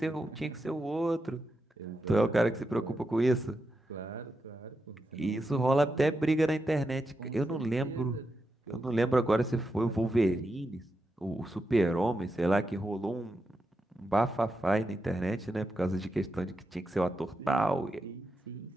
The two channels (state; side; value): normal; both; correlation 0.86